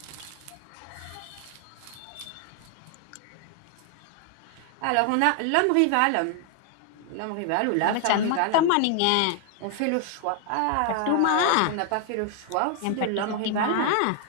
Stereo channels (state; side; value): different; both; correlation 0.00